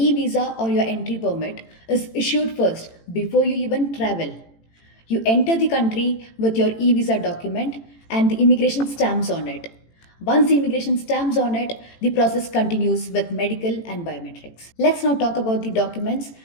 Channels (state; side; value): late; right; 18 ms